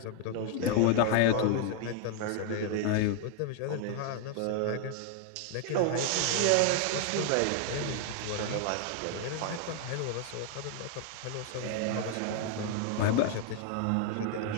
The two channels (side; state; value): both; different; correlation 0.00